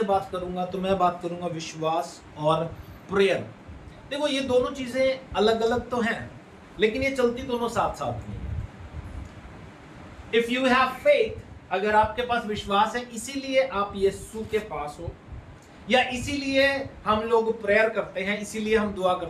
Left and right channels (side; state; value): both; identical; correlation 1.00